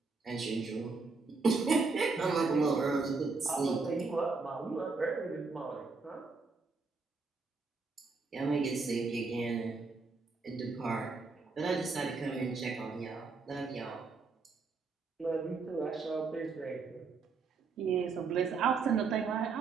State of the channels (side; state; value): left; quieter; 4.4 dB